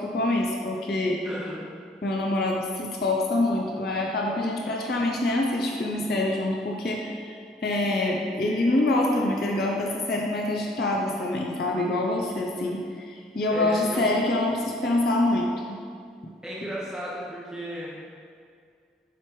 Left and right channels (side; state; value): both; normal; correlation 0.57